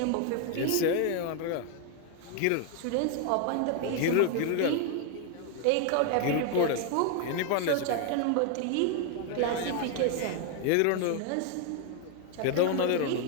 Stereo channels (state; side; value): different; both; correlation 0.00